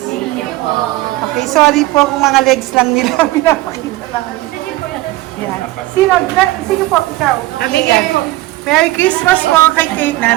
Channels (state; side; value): quieter; left; 17.8 dB